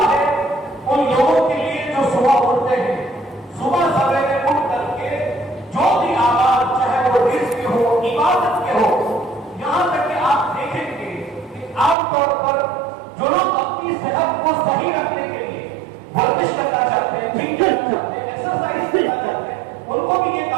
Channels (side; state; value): left; drops out; at 12.0 s